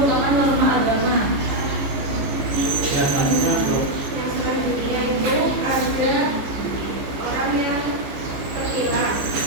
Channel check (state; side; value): late; left; 14 ms